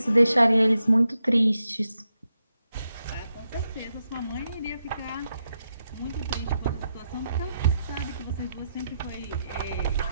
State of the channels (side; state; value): both; inverted; correlation -0.85